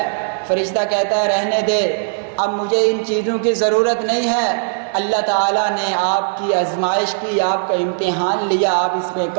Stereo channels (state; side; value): silent; left; 67 dB below the other